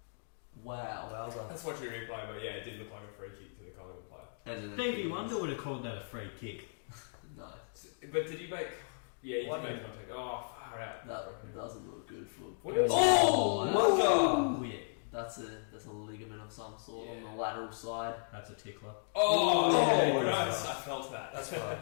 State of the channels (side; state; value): right; silent; digital silence